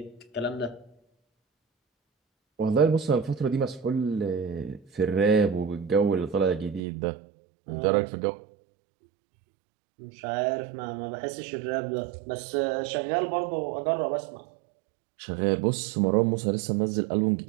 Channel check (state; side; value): drops out; left; at 6.8 s